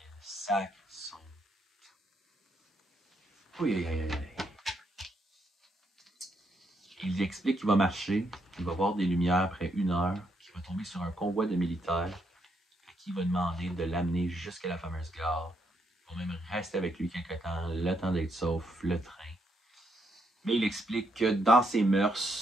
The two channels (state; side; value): normal; both; correlation 0.77